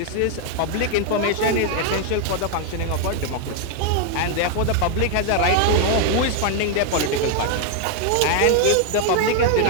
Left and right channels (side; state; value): both; different; correlation 0.00